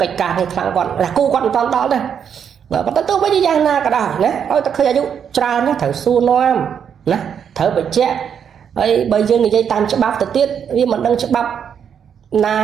កិច្ចការនេះខ្លាំងគាត់គូគាត់មិនតន់ដល់ទេបើប៉ុន្តែទោះបីជាយ៉ាងណាក៏ដោយណាឲ្យតែឃើញអាយុច្រើនណាត្រូវសួរនាំណាត្រូវបញ្ជាក់ហើយបើយើងនិយាយតាមច្បាប់ទៅទៀតវាមិនដឹងច្បាប់ណា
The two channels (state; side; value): quieter; left; 7.8 dB